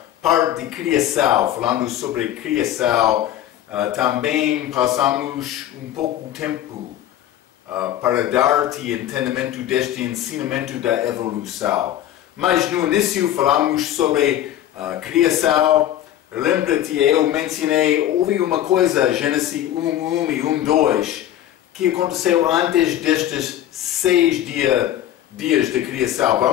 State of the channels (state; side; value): quieter; right; 12.1 dB